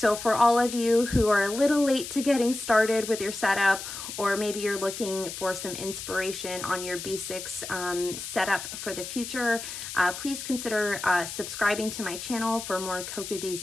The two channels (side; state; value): left; noise; hiss, 8 dB below the sound